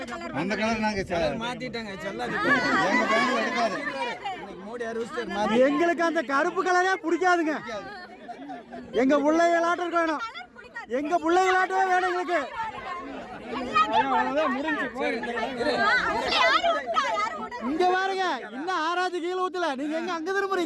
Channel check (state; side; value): identical; both; correlation 1.00